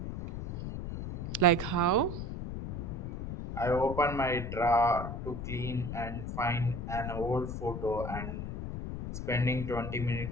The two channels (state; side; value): noise; left; rumble, 5 dB below the sound